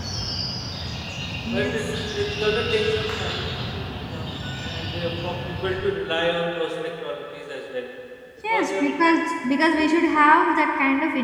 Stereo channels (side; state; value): both; identical; correlation 1.00